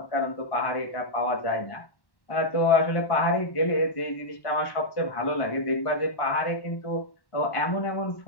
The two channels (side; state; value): right; late; 1.1 ms